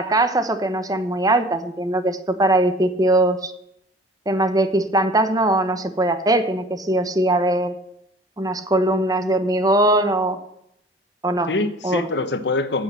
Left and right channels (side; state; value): both; normal; correlation 0.46